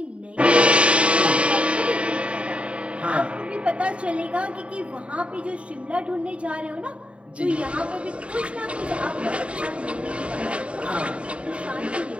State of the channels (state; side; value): late; left; 0.061 ms